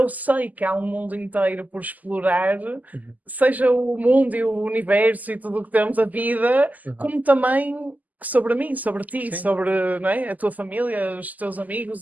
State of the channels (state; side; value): late; left; 0.080 ms